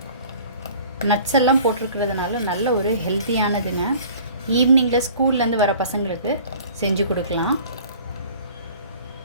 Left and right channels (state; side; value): inverted; both; correlation -0.48